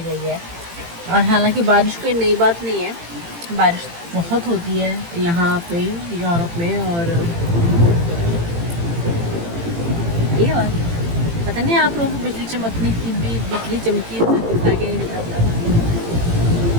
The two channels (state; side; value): late; left; 18 ms